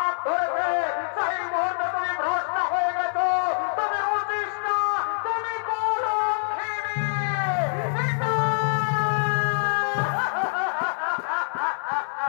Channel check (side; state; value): right; silent; 62 dB below the other